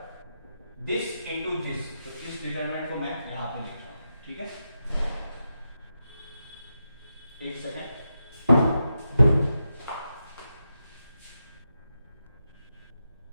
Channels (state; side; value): inverted; both; correlation -0.88